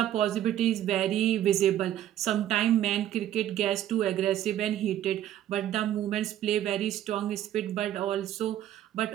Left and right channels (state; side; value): quieter; left; 12.0 dB